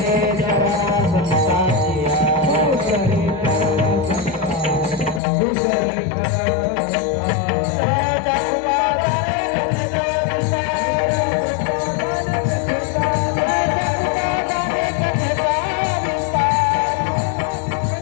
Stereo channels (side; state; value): right; drops out; at 5.2 s